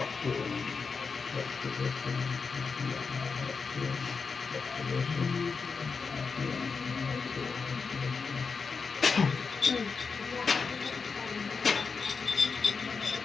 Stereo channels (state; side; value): quieter; right; 5.0 dB